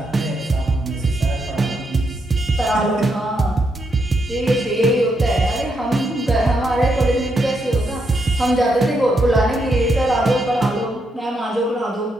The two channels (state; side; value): normal; both; correlation 0.80